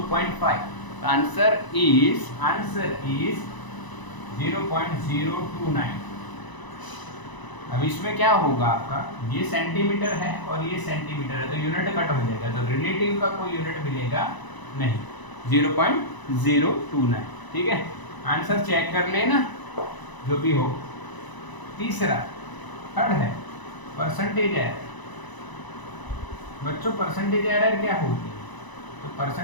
Answer is 0.029। अब इसमें क्या होगा आपका, ये सेंटीमीटर है और ये सेंटीमीटर है तो यूनिट कट हो जाएगा, तो रिलेटिव का कोई यूनिट मिलेगा नहीं, 0.029। ठीक है, आंसर चेक कर लेना जो भी हो। तीसरा, थर्ड है परसेंटेज एरर। बच्चों परसेंटेज एरर क्या होती है, तो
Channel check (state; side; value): late; right; 1.0 ms